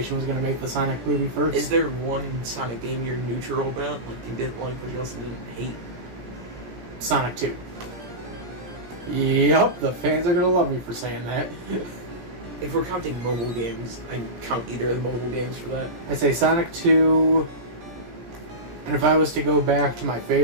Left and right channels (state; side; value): late; left; 17 ms